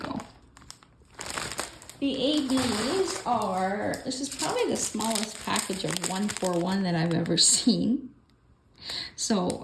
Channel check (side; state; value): both; identical; correlation 1.00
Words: The ABs are, this is probably the smallest package of 141 that I've ever seen. So